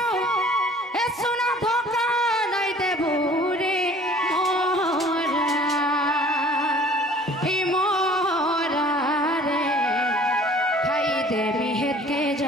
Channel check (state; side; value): normal; both; correlation 0.50